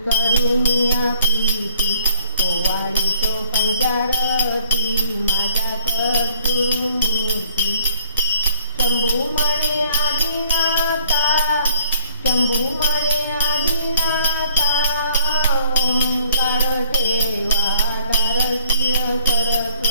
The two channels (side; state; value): both; inverted; correlation -0.60